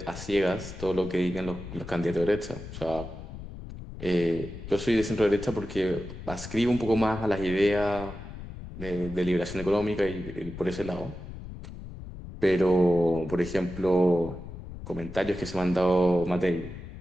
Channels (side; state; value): left; noise; rumble, 12 dB below the sound